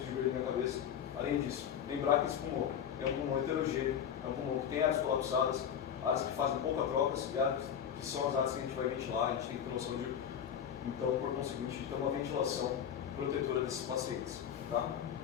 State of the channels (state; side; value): quieter; right; 8.7 dB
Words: de Berlim na cabeça. Além disso, lembrar que esse pulmão é um pulmão heterogêneo, é um pulmão que tem áreas colapsadas, áreas que fazem pouca trocas e áreas que são as áreas que a gente vai ventilar. A gente tem que ter noção então, por conseguinte, de ter uma ventilação protetora desses pacientes. Tá?